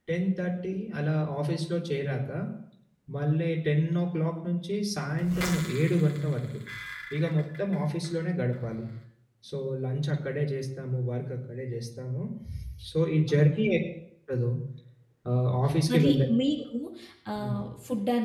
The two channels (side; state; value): both; identical; correlation 1.00